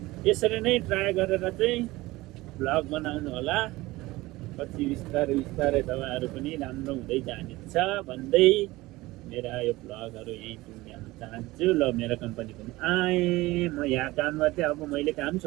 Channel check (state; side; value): quieter; left; 19.6 dB